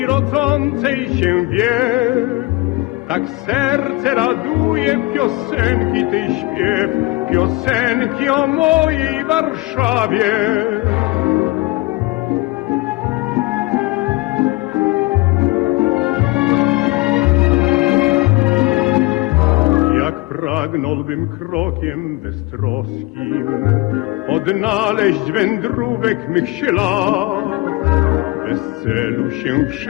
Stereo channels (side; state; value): right; quieter; 21.9 dB